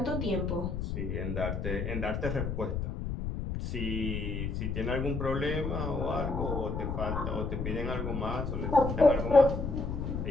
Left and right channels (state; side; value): noise; left; rumble, 3 dB below the sound